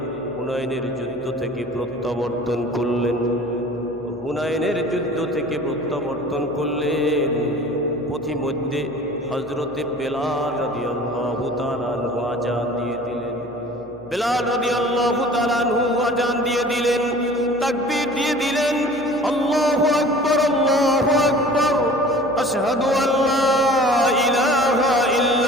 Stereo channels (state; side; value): noise; left; hum, 25 dB below the sound